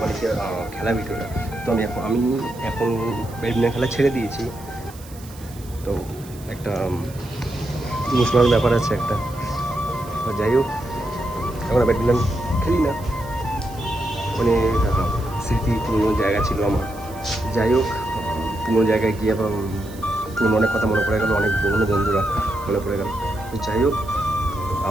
খেলা ভিডিওটা, তো আমি এখন ব্যাডমিন্টন খেলা ছেড়ে দিয়েছি, তো একটা ইমোশনাল ব্যাপার আছে একটা, তো যাই হোক এখন ব্যাডমিন্টন খেলি না, মানে স্মৃতি পুরনো জায়গা ছিল আমার, যাই হোক পুরনো জায়গায় গিয়ে আবার পুরনো অনেক কথা মনে পড়ে গেলো, অনেক পুরনো বন্ধুরা মনে পড়ে গেল, তো যাই হোক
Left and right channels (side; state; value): right; noise; hiss, 20 dB below the sound